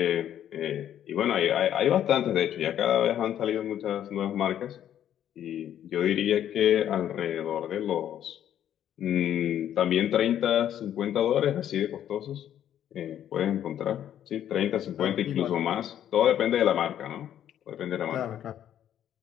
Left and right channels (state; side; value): quieter; right; 10.6 dB